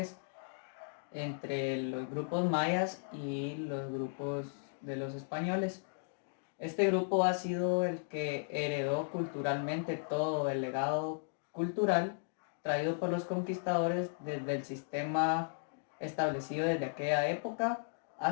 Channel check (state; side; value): silent; right; digital silence